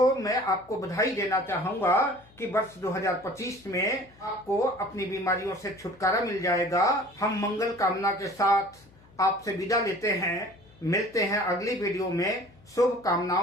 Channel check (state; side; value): noise; left; hum, 27 dB below the sound